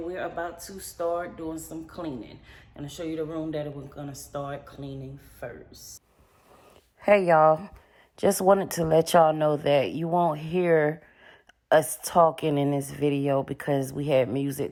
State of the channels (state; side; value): identical; both; correlation 1.00